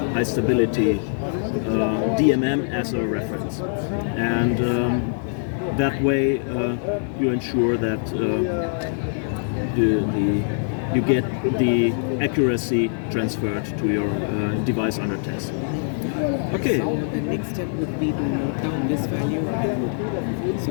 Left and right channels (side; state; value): right; silent; digital silence